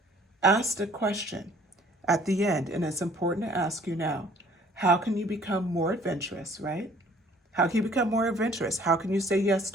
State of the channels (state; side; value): normal; both; correlation 0.55